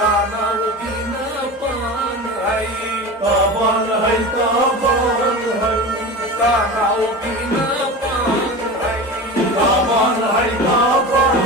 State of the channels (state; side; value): normal; both; correlation 0.30